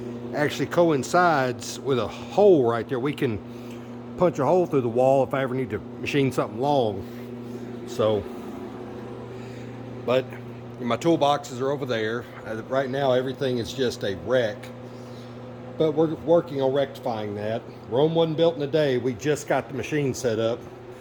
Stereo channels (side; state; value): both; identical; correlation 1.00